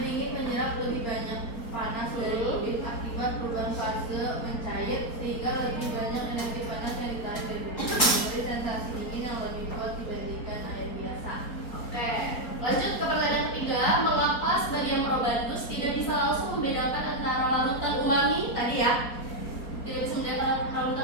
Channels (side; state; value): right; late; 4.3 ms